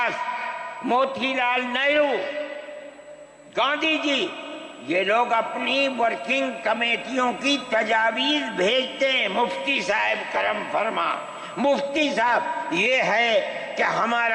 موتی لال نہرو، گاندھی جی، یہ لوگ اپنی ورکنگ کمیٹیوں کی تجاویز بھیجتے ہیں، مفتی صاحب کرم فرما، مفتی صاحب یہ ہے کہ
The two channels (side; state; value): both; identical; correlation 1.00